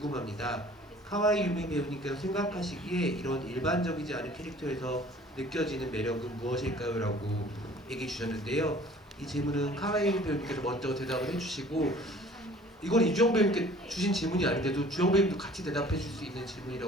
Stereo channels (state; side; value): normal; both; correlation 0.50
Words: 카와이 유미 배우님께서 생각하시기에 이런 일반적이지 않은 캐릭터에서 느껴지는 매력은 무엇일까요? 라고 얘기해 주셨는데요. 이 질문은 카와이 유미 배우님께서 먼저 대답을 해주시고, 이건 이주영 배우님께 주신 질문이 아닌데도 주영 배우님도 같이 대답해 줄 수 있는